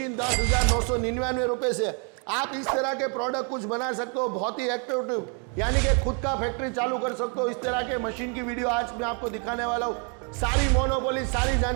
10,999 रुपए से आप इस तरह के प्रोडक्ट कुछ बना सकते हो। बहुत ही एक्टिव, यानी कि खुद का फैक्ट्री चालू कर सकते हो। इस तरह के मशीन की वीडियो आज मैं आपको दिखाने वाला हूँ। सारी मोनोपोली, सारी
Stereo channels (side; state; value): left; quieter; 38.9 dB